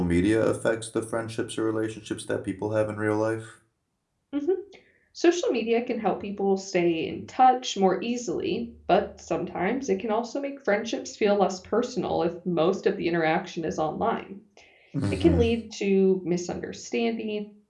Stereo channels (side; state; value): both; identical; correlation 1.00